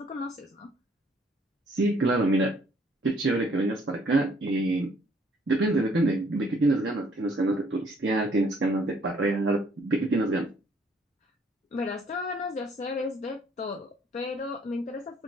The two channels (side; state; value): both; normal; correlation 0.63